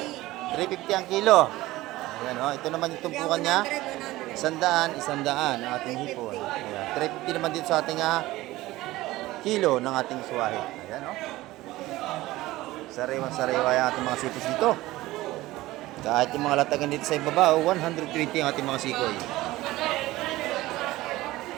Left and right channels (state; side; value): quieter; left; 17.8 dB